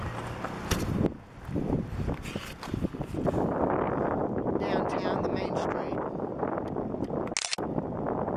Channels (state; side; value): identical; both; correlation 1.00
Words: downtown, the main street.